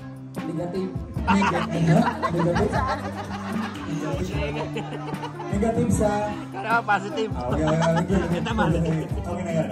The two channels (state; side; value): identical; both; correlation 1.00